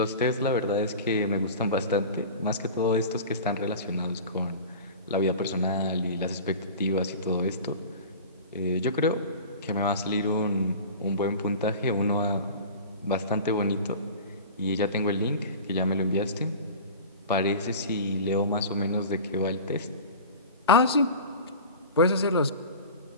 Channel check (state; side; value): inverted; both; correlation -0.36